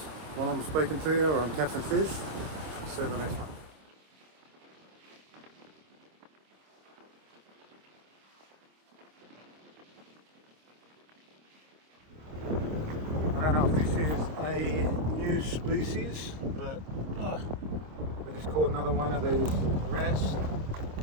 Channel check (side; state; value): left; late; 26 ms